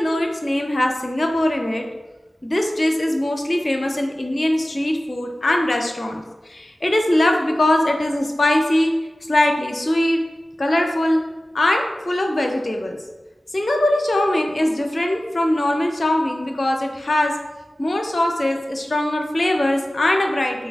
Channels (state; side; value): normal; both; correlation 0.96